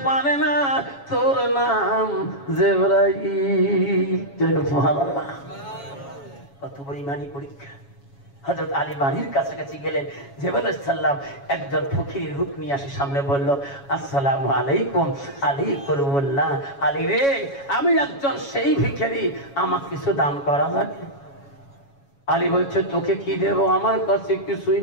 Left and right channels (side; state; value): right; late; 7.2 ms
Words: পারে না তোর নাম জিবরাইল। সুবহানাল্লাহ, কত বড় ঈমানী পরীক্ষা। হযরত আলী বাড়ির কাছাকাছি গেলেন, জিবরাইল আলাইহিস সালাম একজন ফকিরের রূপ নিয়ে আসে সামনে বলল আসসালামু আলাইকুম। আলী করুল্লাহ, আলী রে আমি একজন সেই ভিখারি, আমাকে কিছু দান করা যাবে? আলী বলছে তোকে কি দেব, আমার কাছে কিছুই